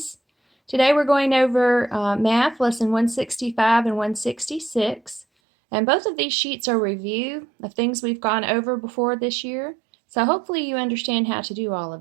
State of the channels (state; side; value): drops out; left; at 5.2 s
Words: Today we're going over Math, Lesson 165 and 166. And both of these sheets are review of things we've gone over before this year. So hopefully you understand how to do all